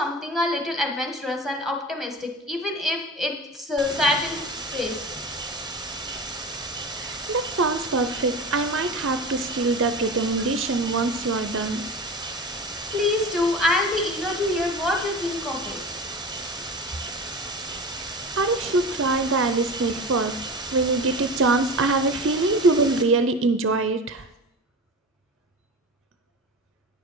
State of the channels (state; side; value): normal; both; correlation 0.31